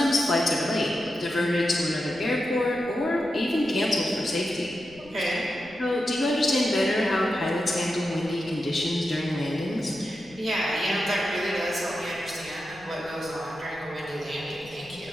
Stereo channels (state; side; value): noise; left; rumble, 24 dB below the sound